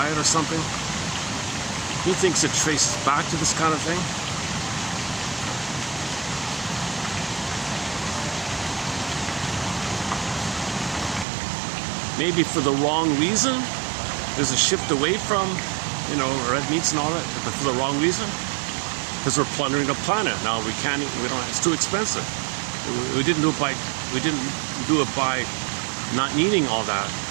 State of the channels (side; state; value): left; drops out; at 11.2 s